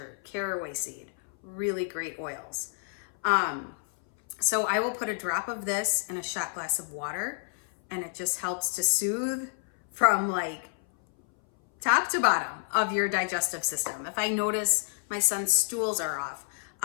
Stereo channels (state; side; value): silent; right; 58 dB below the other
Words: caraway seed, really great oils. So I will put a drop of this in a shot glass of water, and it just helps to soothe from like top to bottom of your digestive system. If I notice my son's stools are off,